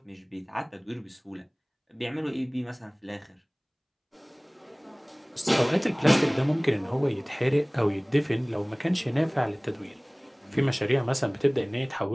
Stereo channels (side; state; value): both; identical; correlation 1.00